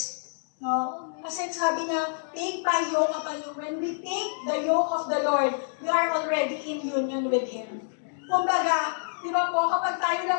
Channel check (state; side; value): silent; right; digital silence